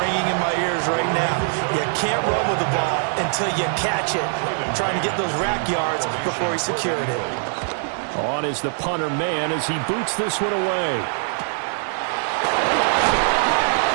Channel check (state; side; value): silent; left; 58 dB below the other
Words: in my ears right now. You can't run with the ball until you catch it. Trying to get those rack yards before he secured it. On is the punter man as he boots this one away.